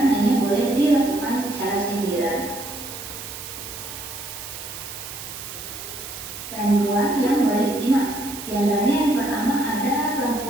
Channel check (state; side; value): noise; right; hiss, 10 dB below the sound